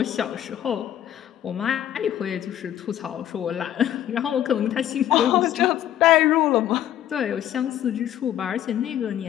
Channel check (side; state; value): right; quieter; 11.5 dB